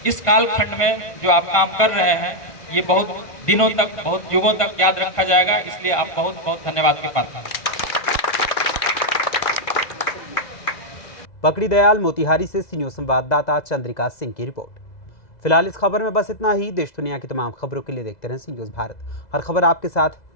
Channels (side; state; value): right; late; 1.5 ms